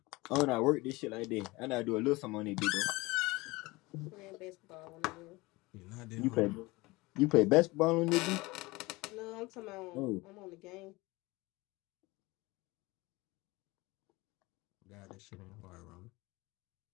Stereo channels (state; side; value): quieter; right; 22.3 dB